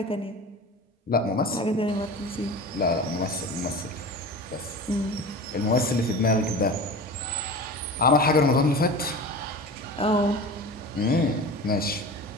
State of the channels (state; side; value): normal; both; correlation 0.33